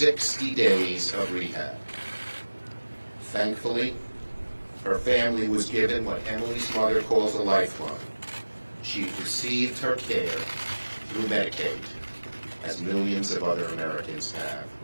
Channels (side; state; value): both; inverted; correlation -1.00